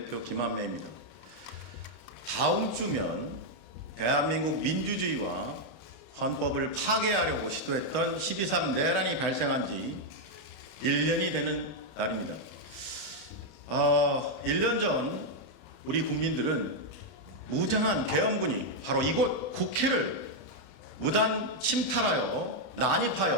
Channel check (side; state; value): right; late; 32 ms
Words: 김한매입니다. 다음 주면 대한민국 민주주의와 헌법을 파괴하려고 시도했던 12.3 내란이 발생한 지 1년이 되는 날입니다. 1년 전 우리 국민들은 무장한 계엄군이 바로 이곳 국회를 무단 침탈하여